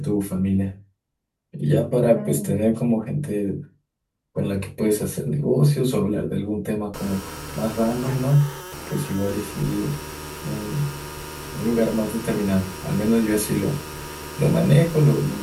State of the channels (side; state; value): both; identical; correlation 1.00